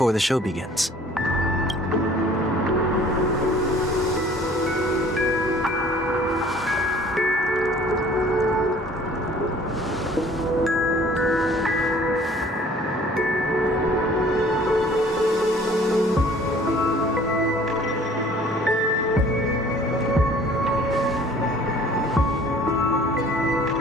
the show begins?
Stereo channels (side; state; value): both; normal; correlation 0.52